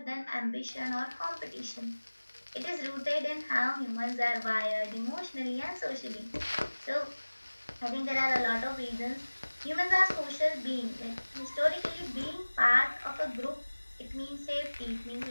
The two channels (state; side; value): inverted; both; correlation -1.00